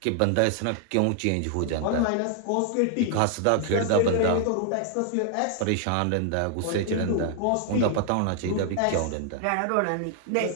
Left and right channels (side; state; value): both; different; correlation 0.00